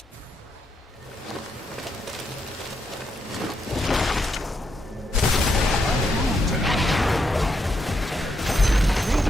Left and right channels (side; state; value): both; normal; correlation 0.80